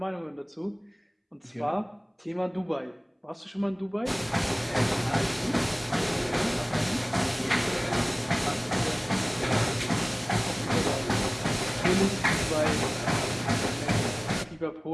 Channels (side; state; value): both; identical; correlation 1.00